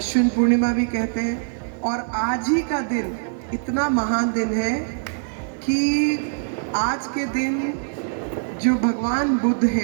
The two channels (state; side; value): silent; left; digital silence